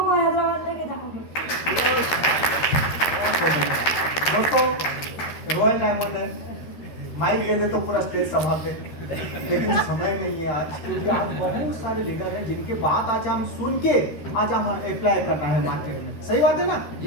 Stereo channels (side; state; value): right; late; 13 ms